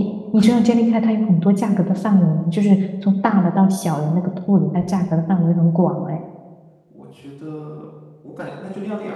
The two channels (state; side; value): identical; both; correlation 1.00